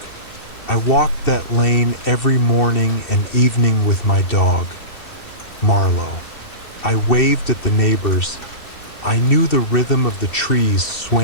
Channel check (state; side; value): late; right; 2.7 ms